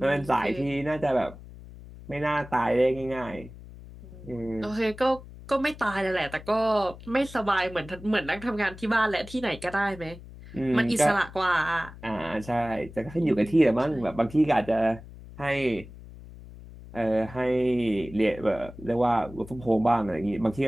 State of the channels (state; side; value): noise; left; hum, 17 dB below the sound